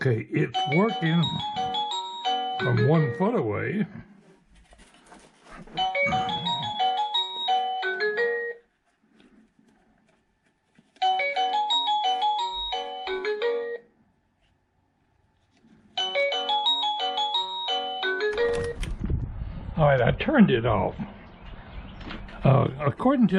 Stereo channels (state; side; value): identical; both; correlation 1.00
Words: it's working from 1 foot away. All right, I turned it off. According